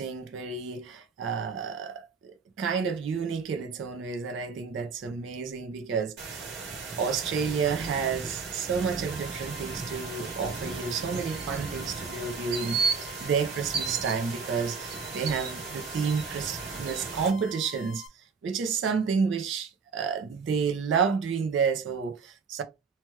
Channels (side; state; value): left; quieter; 5.3 dB